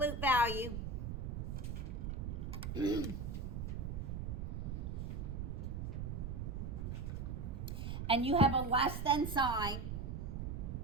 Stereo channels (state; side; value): noise; right; rumble, 3 dB below the sound